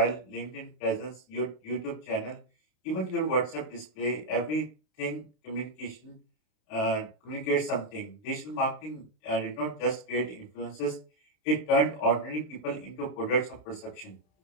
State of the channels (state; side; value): late; right; 32 ms